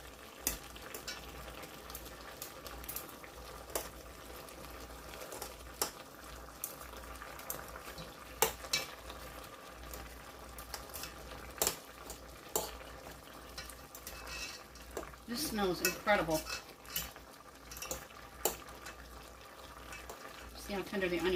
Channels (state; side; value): identical; both; correlation 1.00